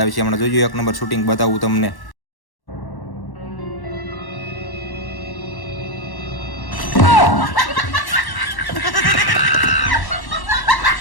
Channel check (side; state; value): right; late; 1.1 ms